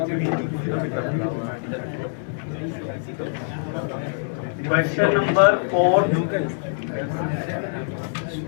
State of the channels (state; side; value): silent; right; digital silence